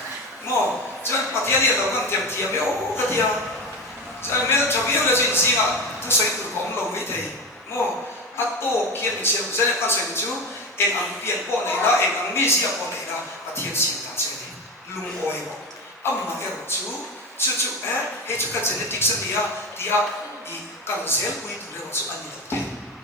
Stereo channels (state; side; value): normal; both; correlation 0.24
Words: mà chọn bắt thiên nhiên là con tiệm tiệm béo cái tiệm cho nên mình đã chọn béo là chuyện gì à tôi xây từ công lâu với thầy mà à tổ kiến mình xem cho nên con xây chú em ăn biển bỏ này đó em ăn mì xì bỏ này đó à thiên sinh ta chơi đi lung oi bỏ âm mà em chú hay chú cái genetic sẽ đi đi cần sẽ quy tụ được chú anh đi được